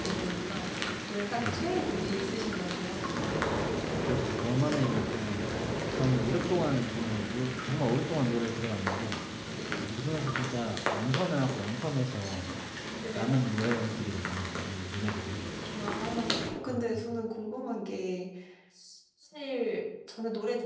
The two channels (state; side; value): identical; both; correlation 1.00